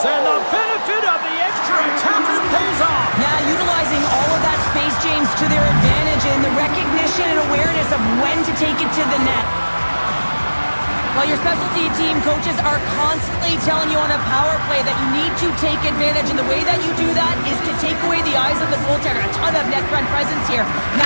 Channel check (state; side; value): inverted; both; correlation -1.00